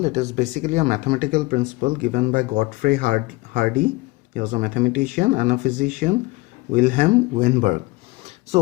it is basically a mathematical principle given by Godfrey Hardy. He was a mathematician and a physician, Wilhelm Weinberg.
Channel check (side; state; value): right; quieter; 22.3 dB